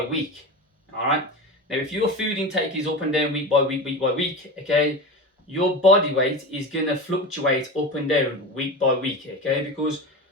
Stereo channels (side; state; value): both; normal; correlation 0.26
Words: week, all right. Now, if your food intake is up and down week by week, okay, your body weight is gonna fluctuate up and down week by week, okay? Because